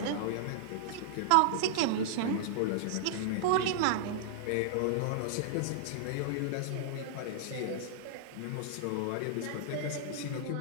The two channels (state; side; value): different; both; correlation -0.01